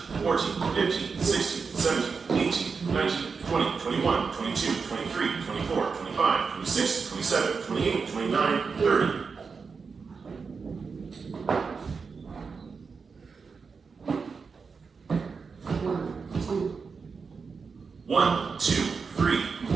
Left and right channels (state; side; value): quieter; left; 5.2 dB